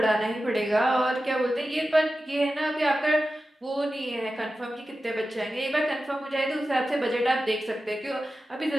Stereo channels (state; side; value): normal; both; correlation 0.93